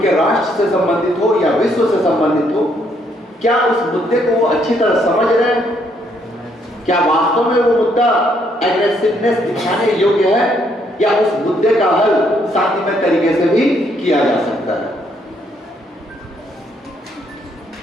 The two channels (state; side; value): normal; both; correlation 0.71